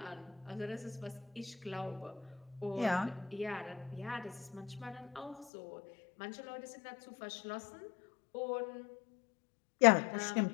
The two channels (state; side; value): drops out; right; at 5.5 s